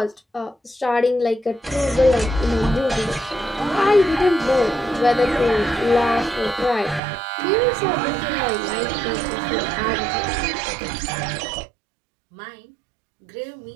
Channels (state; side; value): drops out; left; at 7.0 s